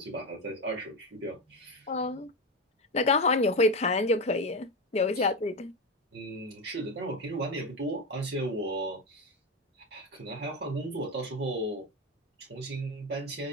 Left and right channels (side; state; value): both; normal; correlation 0.15